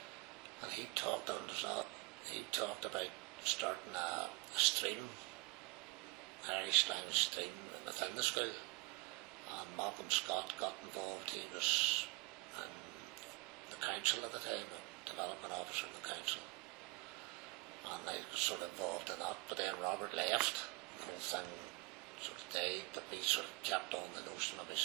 and he talked about starting a stream, Irish language stream within the school, and Malcolm Scott got involved. He was in the council at the time, development officer in the council, and I was sort of involved in that, but then Robert left, the whole thing sort of died, but we sort of kept on the notion of me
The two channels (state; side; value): quieter; left; 27.2 dB